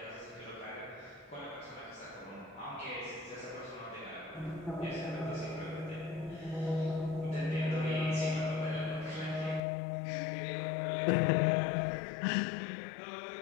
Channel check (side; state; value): right; drops out; at 9.6 s